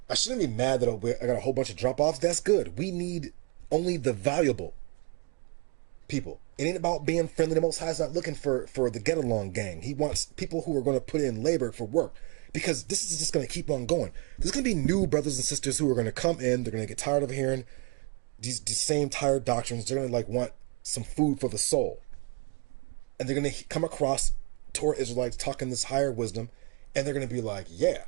I shouldn't be mad that I got a whole bunch of drop-offs. That's good. We need only the valuable people. It ain't about being friendly. The Most High is not looking for the get-along gang. He wants people who are going to put in labor for work, because this is just going to keep on going. There's going to be new brothers and sisters who are going to come in. They're going to get tired of hearing these same tired doctrines. They're going to like want some food for the soul. And they're going to come across Torah Israelites talking this higher wisdom, and they're going to be like, yeah,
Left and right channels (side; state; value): left; quieter; 31.4 dB